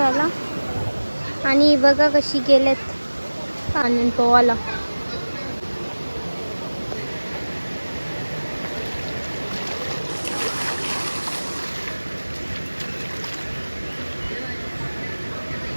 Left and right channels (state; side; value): inverted; both; correlation -1.00